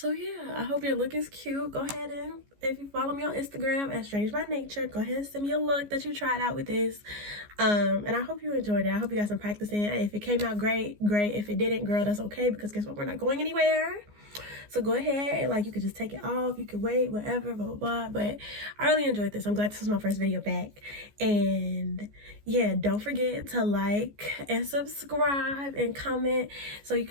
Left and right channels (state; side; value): late; left; 14 ms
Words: yeah, I hope your look is cute. Go ahead and, if you follow me on Instagram at Strange by Nature, go ahead and send me a look that you tried out with this. And I hope you enjoyed it. I hope you got some practicing. If it came out great, great. If it didn't, girl, that's okay, because guess what? We're not going anywhere. So go ahead and like, you could just take it off. You could wait, whatever, blah, blah, blah. But I really enjoyed this. I'm glad this was my first video back. And yeah, don't forget to like and subscribe and comment so you